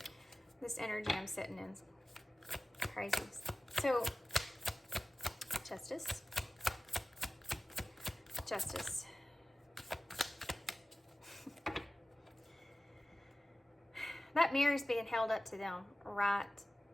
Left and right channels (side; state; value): both; normal; correlation 0.96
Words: This energy I'm sitting in is crazy. So, Justice. Justice. That mirror is being held up to them right